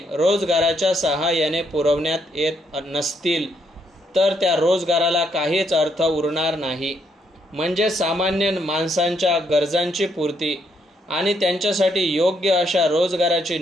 रोजगाराच्या सहाय्याने पुरवण्यात येत नसतील तर त्या रोजगाराला काहीच अर्थ उरणार नाही. म्हणजे सामान्य माणसांच्या गरजांची पूर्ती आणि त्यांच्यासाठी योग्य अशा रोजगाराची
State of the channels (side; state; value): both; normal; correlation 0.74